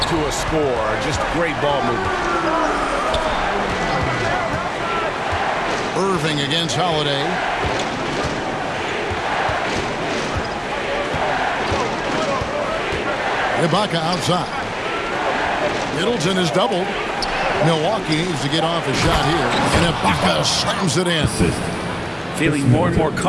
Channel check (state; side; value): identical; both; correlation 1.00